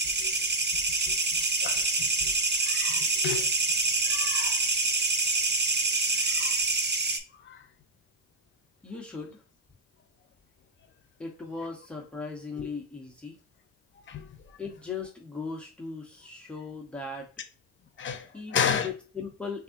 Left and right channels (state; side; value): normal; both; correlation -0.05